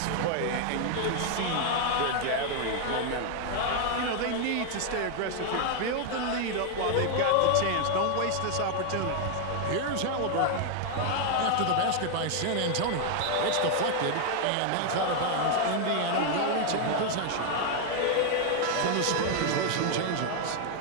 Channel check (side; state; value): both; different; correlation 0.00